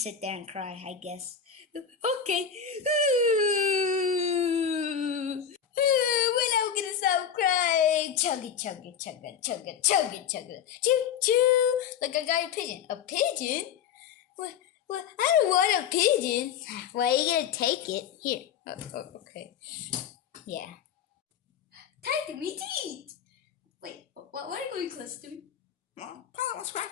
sit there and cry, I guess. Okay. When I'm gonna stop crying? Chug it, chug it, chug it, chug it, chug it, chug it. Choo choo. Look, I got a pigeon. A pigeon? What? What? I don't want a pigeon. Well, are you gonna take it? Here. Okay. Yeah. Tiger, me teeth. Wait, why are you going close to me? Well, Polly wants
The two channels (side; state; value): right; quieter; 7.8 dB